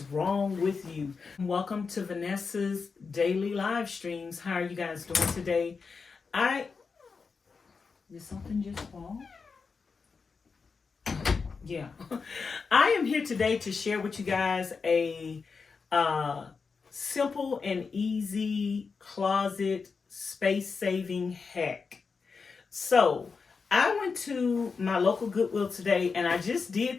wrong with you. Welcome to Vanessa's daily live streams. How are you guys doing today? Did something just fall? Yeah. I am here today to share with you guys a simple and easy closet space saving hack. So I went to my local Goodwill today and I just did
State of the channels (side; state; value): right; quieter; 5.0 dB